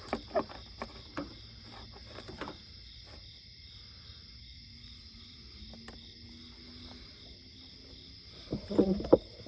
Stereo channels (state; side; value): identical; both; correlation 1.00